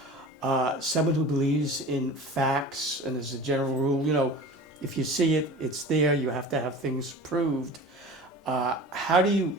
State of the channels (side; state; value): both; normal; correlation 0.38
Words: someone who believes in facts, and as a general rule, if you see it, it's there. You have to have things proved. How do you